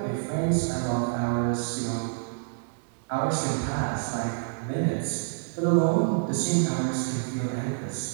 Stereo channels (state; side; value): silent; left; digital silence